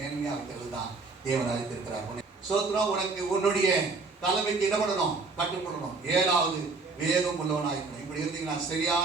வைக்கிறது தான் தேவன் அழைத்திருக்கிறார். சோத்ரம். உனக்கு உன்னுடைய தலைமைக்கு என்ன பண்ணணும், கட்டுப்படணும். 7வது வேகம் உள்ளவனாயிருக்கணும். இப்படி இருந்தீங்கன்னா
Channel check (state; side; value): quieter; left; 4.0 dB